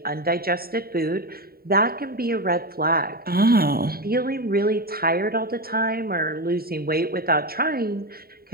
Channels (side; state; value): left; late; 0.44 ms